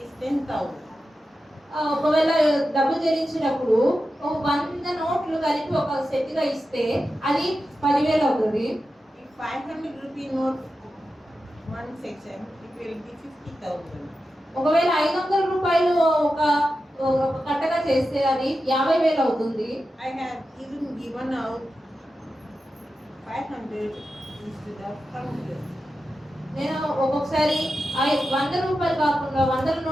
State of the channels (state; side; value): normal; both; correlation 0.91